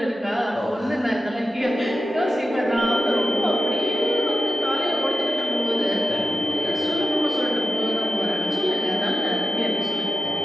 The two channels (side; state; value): both; normal; correlation 0.90